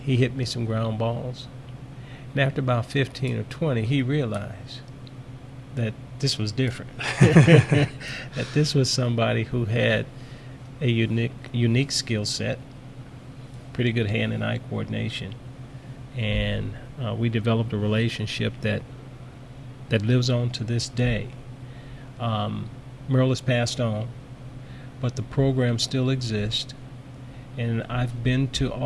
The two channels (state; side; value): identical; both; correlation 1.00